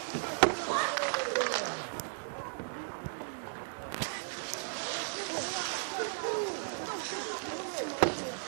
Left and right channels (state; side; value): silent; left; digital silence